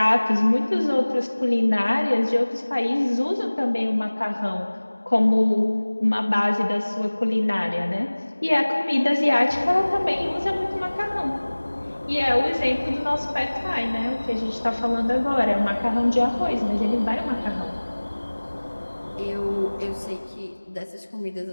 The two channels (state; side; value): inverted; both; correlation -1.00